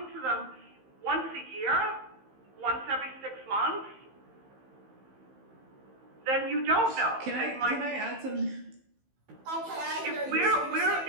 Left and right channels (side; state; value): left; late; 15 ms